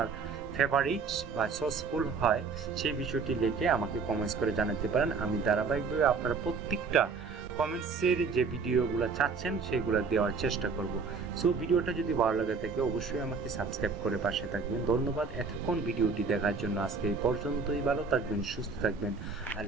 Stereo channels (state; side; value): quieter; left; 5.0 dB